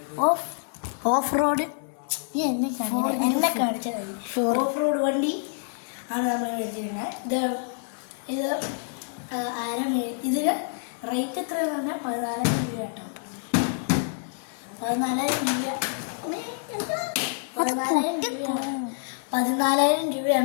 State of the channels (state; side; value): silent; right; digital silence